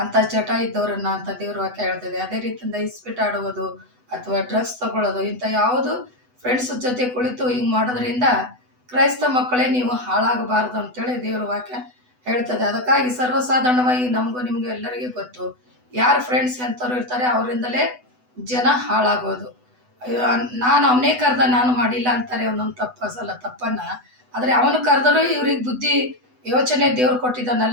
ಅಂತ ಚಟ ಇದ್ದವರನ್ನ ಅಂತ ದೇವ್ರ ವಾಕ್ಯ ಹೇಳ್ತದೆ. ಅದೇ ರೀತಿಯಿಂದ ಇಸ್ಪೀಟ್ ಆಡುವುದು ಅಥವಾ ಡ್ರಗ್ಸ್ ತಗೊಳ್ಳೋದು, ಇಂಥ ಯಾವುದು ಫ್ರೆಂಡ್ಸ್ ಜೊತೆ ಕುಳಿತು ಹಿಂಗೆ ಮಾಡೋದ್ರಿಂದ ಕ್ರೈಸ್ತ ಮಕ್ಕಳೇ ನೀವು ಹಾಳಾಗಬಾರ್ದು ಅಂತೇಳಿ ದೇವ್ರ ವಾಕ್ಯ ಹೇಳ್ತದೆ. ಅದಕ್ಕಾಗಿ ಸರ್ವಸಾಧಾರಣವಾಗಿ ನಮಗೂ ನಿಮಗೂ ಎಲ್ಲರಿಗೂ ಗೊತ್ತು, ಯಾರು ಫ್ರೆಂಡ್ಸ್ ಎಂಥವ್ರು ಇರ್ತಾರೆ ಅವರಿಂದಲೇ ಜನ ಹಾಳಾಗೋದು. ನಾನು ಅವನೇ ಕರೆದ ನಾನು ಮಾಡಿಲ್ಲ ಅಂತಾರೆ ಒಂದೊಂದು ತಪ್ಪನ್ನು. ಆದರೆ ಅವನು ಕರೆದರೂ ಇವ್ರಿಗೆ ಬುದ್ಧಿ ಯೋಚನೆ ದೇವ್ರು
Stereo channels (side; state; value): left; late; 8.0 ms